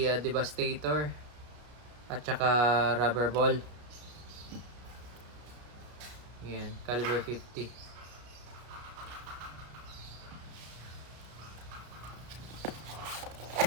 Devastator at saka rubber ball. Yan, caliber 50.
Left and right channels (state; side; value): late; left; 33 ms